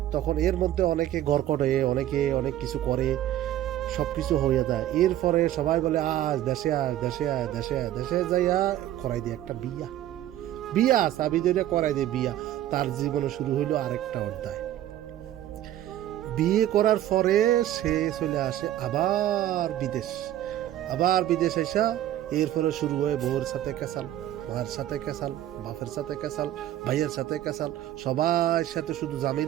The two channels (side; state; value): left; quieter; 12.7 dB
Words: তখন এর মধ্যে অনেকে ঘর করে, অনেকে অনেক কিছু করে, সব কিছু হয়ে যায়। এরপরে সবাই বলে আজ দেশে আয়, দেশে আয়, দেশে আয়। দেশে যাইয়া করাই দিয়ে একটা বিয়া চাবি ধরে করাই দিয়ে বিয়া। তার জীবনে শুরু হইলো আরেকটা অধ্যায়। বিয়ে করার পরে সে চলে আসে আবার বিদেশ এসা এরপরে শুরু হয় বউর সাথে কেসাল, মায়ের সাথে কেসাল, বাপের সাথে কেসাল, ভাইয়ের সাথে কেসাল, সবার সাথে শুধু